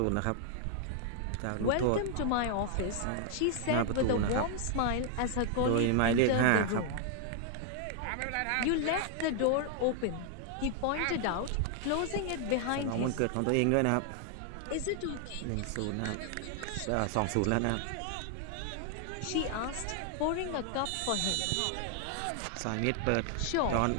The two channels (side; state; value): both; different; correlation 0.00